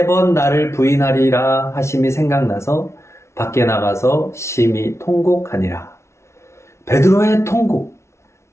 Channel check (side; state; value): right; late; 0.13 ms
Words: 나를 부인하리라 하심이 생각나서 밖에 나가서 심히 통곡하니라. 베드로의 통곡,